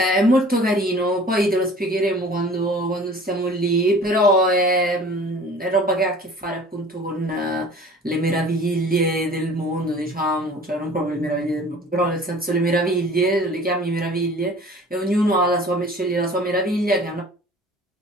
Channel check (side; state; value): both; normal; correlation 0.46